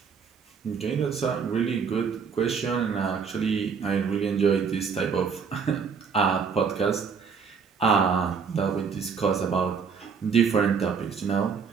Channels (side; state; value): left; quieter; 6.0 dB